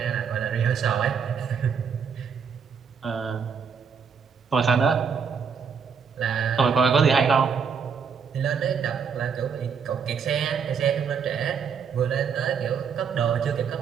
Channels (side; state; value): left; quieter; 6.5 dB